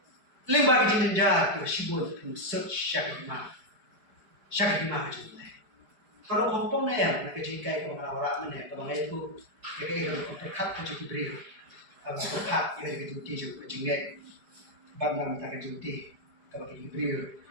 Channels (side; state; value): left; late; 4.9 ms